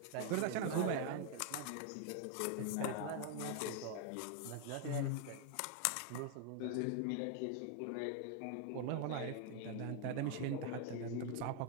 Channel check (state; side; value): different; both; correlation 0.00